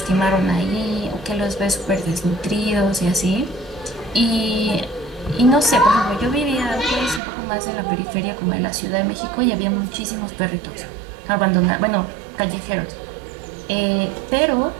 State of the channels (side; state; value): left; drops out; at 7.2 s